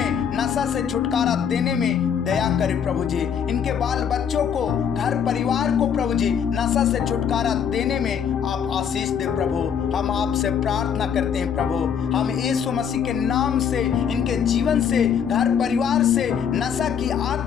नशा से छुटकारा देने में दया करें प्रभु जी। इनके बाल बच्चों को, घर परिवार को प्रभु जी नशा से छुटकारा देने में आप आशीष दे प्रभु। हम आपसे प्रार्थना करते हैं प्रभु। हम यीशु मसीह के नाम से इनके जीवन से, घर परिवार से नशा की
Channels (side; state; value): right; quieter; 7.7 dB